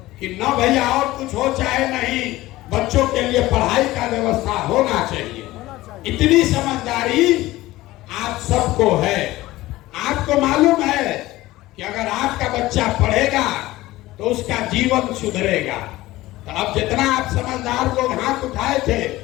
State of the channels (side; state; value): right; quieter; 17.6 dB